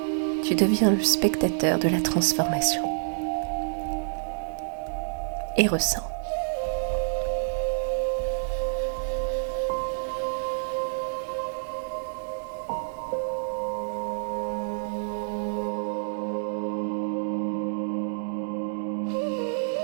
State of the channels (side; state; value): left; silent; digital silence